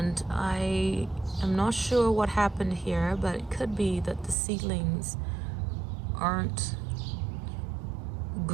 I am not sure what happened here, but it could be that the seedlings aren't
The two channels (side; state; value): left; drops out; at 4.4 s